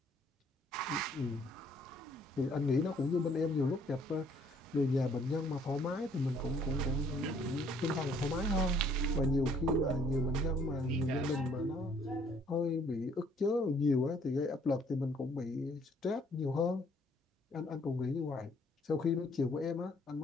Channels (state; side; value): normal; both; correlation 0.63